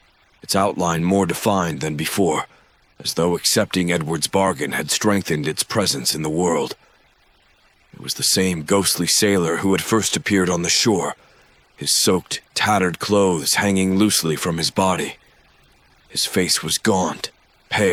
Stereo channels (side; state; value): both; identical; correlation 1.00